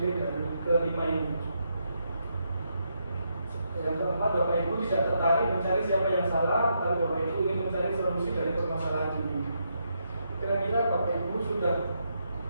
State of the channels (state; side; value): inverted; both; correlation -0.80